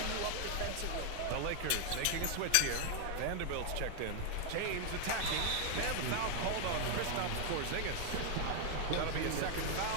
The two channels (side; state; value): both; different; correlation 0.00